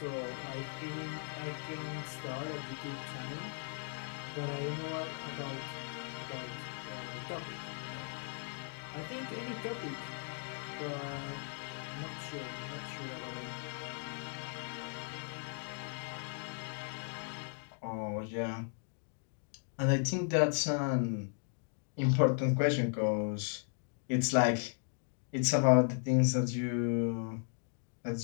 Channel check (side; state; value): right; silent; 53 dB below the other